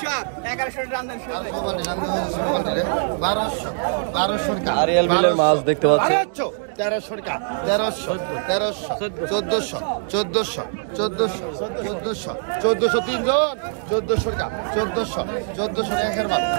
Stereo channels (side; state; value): left; silent; digital silence